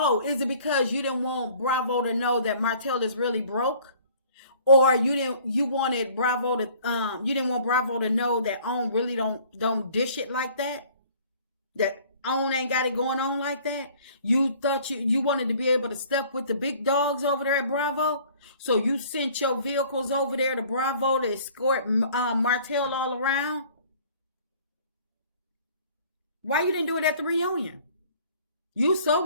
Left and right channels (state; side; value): inverted; both; correlation -0.53